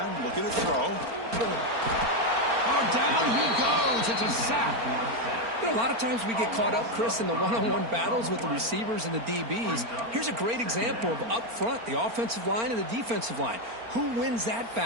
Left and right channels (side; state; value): left; late; 4.4 ms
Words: looking to throw. Oh, down he goes. It's a sack. You know, a lot of times we get caught up, Chris, in the one-on-one battles with the receivers and the DBs. Here's a great example of up front, the offensive line and the defensive line. Who wins that